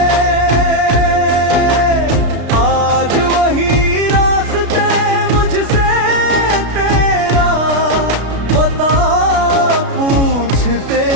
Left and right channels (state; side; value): late; left; 33 ms